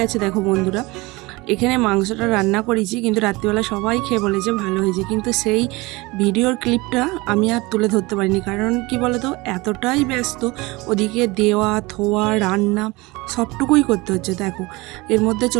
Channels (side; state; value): left; quieter; 23.1 dB